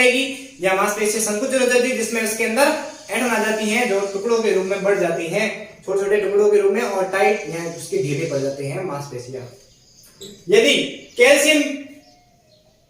या मांसपेशियां संकुचन हो जाती है, जिसमें उसके अंदर ऐंठन आ जाती है जो टुकड़ों के रूप में बढ़ जाती है, छोटे छोटे टुकड़ों के रूप में, और टाइट या उसके ढीले पड़ जाते हैं मांसपेशियां। यदि कैल्शियम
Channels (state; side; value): identical; both; correlation 1.00